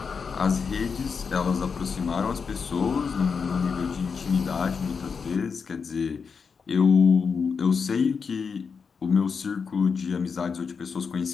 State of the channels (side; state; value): right; quieter; 5.7 dB